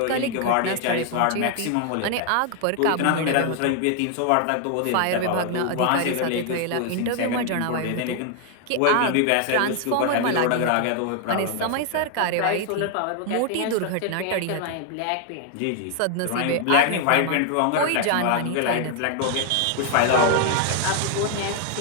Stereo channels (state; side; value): different; both; correlation 0.00